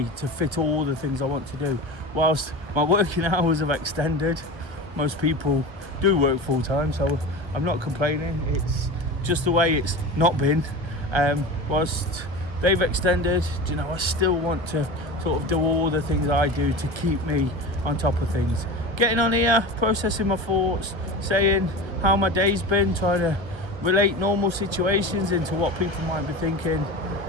to fit all the things I want to do. Whilst my working hours have extended, most people do work full-time, so I'm not complaining. It's just the way it's not been. Whilst they've extended, you know, I still want to sort of do all the things I do to keep me on top of things. Getting on here, processing my thoughts, saying how my day's been, trying to relate normal situations into what people might be thinking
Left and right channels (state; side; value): late; left; 1.3 ms